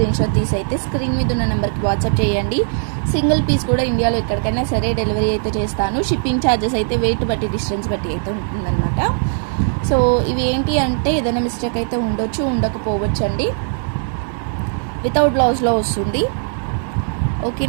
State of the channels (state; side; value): silent; left; digital silence